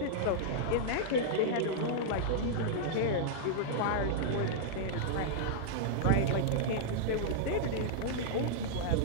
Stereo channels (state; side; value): different; both; correlation -0.02